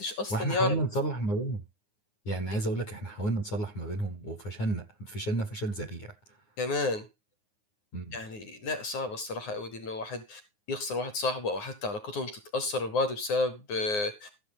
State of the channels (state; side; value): late; right; 9.6 ms